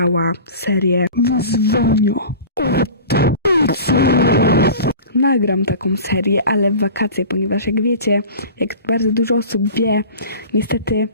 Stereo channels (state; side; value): inverted; both; correlation -0.38